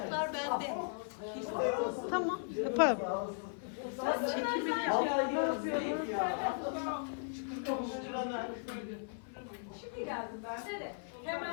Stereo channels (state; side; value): silent; right; 53 dB below the other